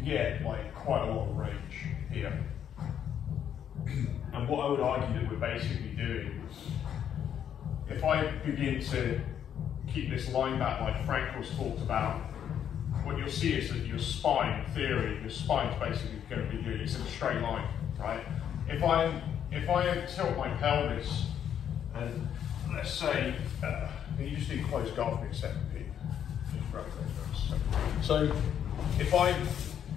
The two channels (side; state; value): right; quieter; 9.2 dB